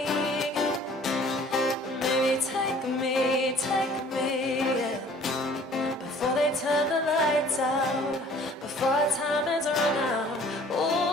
Maybe take me, yeah, before they turn the lights out, before time is run out.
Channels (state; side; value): normal; both; correlation 0.52